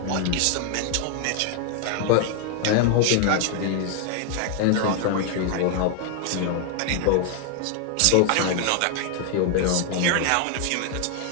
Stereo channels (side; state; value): both; different; correlation 0.00